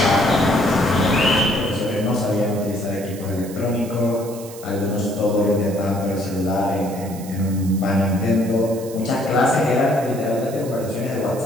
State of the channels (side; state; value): right; noise; hiss, 17 dB below the sound